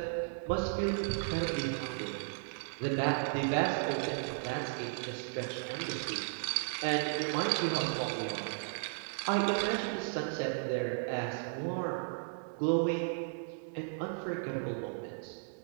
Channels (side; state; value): left; silent; 54 dB below the other